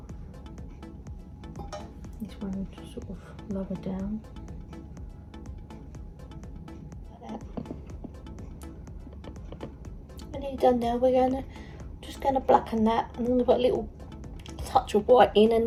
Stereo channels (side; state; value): both; identical; correlation 1.00